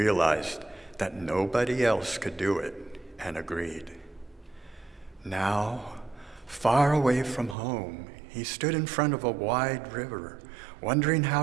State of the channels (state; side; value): drops out; left; at 7.6 s